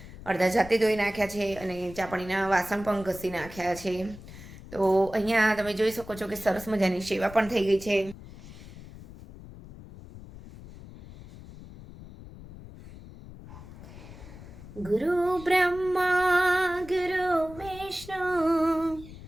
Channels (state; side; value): noise; left; rumble, 16 dB below the sound